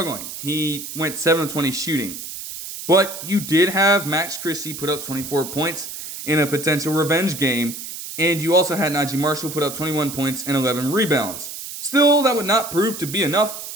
He went 7 of 20 shooting. But you did have Max Christie put up 24 points in a potential revenge game, and you also had Najee Marshall put up 21 points and 11 rebounds. Still, that would not prove to be enough,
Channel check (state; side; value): noise; right; hiss, 9 dB below the sound